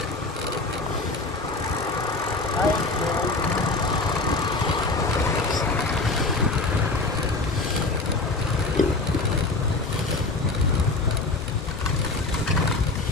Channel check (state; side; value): quieter; right; 3.5 dB